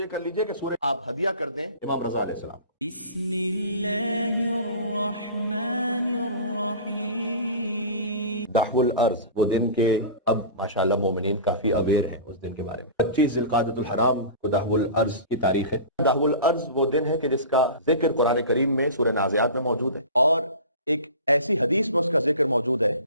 کر لیجئے کہ سورہ آپ ہدیہ کر دیں امام رضا علیہ السلام. بسم اللہ الرحمن الرحیم. دحو الارض، وہ دن کے اب ماشاءاللہ مومنین کافی اویئر ہیں اس دن کے بارے میں. 25 ذی القعدۃ الحرام کو دحو الارض کی تاریخ ہے. دحو الارض وہ دن ہے کہ جس کا ذکر قرآن کریم میں سورہ نازعات میں موجود ہے، اور ایک ایسی حدیث میں اس کا ذکر موجود ہے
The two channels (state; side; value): inverted; both; correlation -0.35